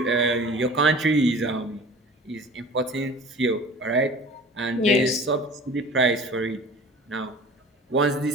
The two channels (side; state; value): both; normal; correlation 0.42